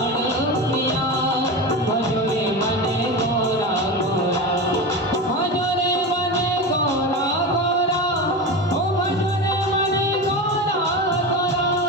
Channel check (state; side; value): normal; both; correlation 0.24